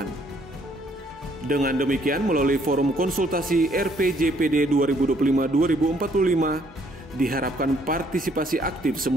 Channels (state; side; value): normal; both; correlation 0.66